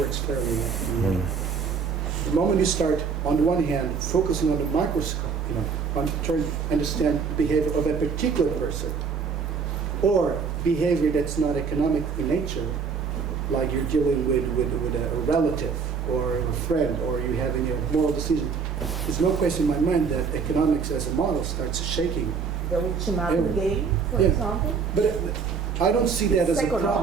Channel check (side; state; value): left; quieter; 5.8 dB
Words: fairly well. The moment you start, on the one hand, focusing on the microscope, on trying to understand the behavior of a particular person, or behavior that's not economic in nature, like you're dealing with a relative or a friend, or you're having a moral decision, there's no question in my mind that economics as a model starts shaking. The ultimatum game, for Yeah. example. But I don't see that as a